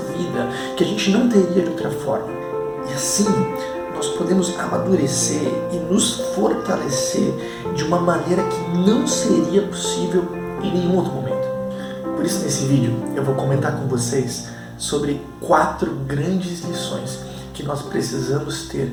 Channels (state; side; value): identical; both; correlation 1.00